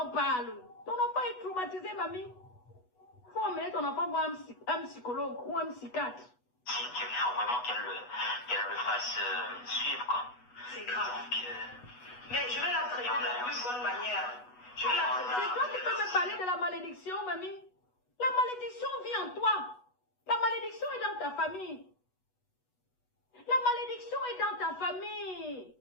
parle. Ton enfant est traumatisé, mamie. Il faut emmener ton enfant voir un psychologue ou un psychiatre. Il faut vraiment qu'elle le fasse suivre, quoi. C'est grave. Donc, mais je vais la traiter de la plus bonne manière. Je vais la traiter. C'est toi qui peux me parler de la malédiction, mamie. La malédiction vit en toi. La malédiction est dans ta famille. La malédiction est dans ta famille.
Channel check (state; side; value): late; right; 8.1 ms